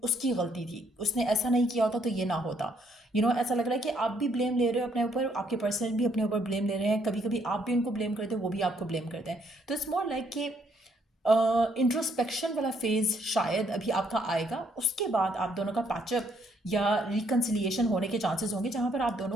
उसकी गलती थी, उसने ऐसा नहीं किया होता तो ये ना होता। ऐसा लग रहा है कि आप भी ब्लेम ले रहे हो अपने ऊपर, आपके पर्सन भी अपने ऊपर ब्लेम ले रहे हैं, कभी कभी आप भी उनको ब्लेम करते हो, वो भी आपको ब्लेम करते हैं। तो इट्स मोर लाइक कि इंट्रोस्पेक्शन वाला फेज शायद अभी आपका आएगा, उसके बाद आप दोनों का पैचअप या रिकन्सिलिएशन होने के चांसेस होंगे, जहाँ पर आप दोनों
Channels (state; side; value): normal; both; correlation 0.70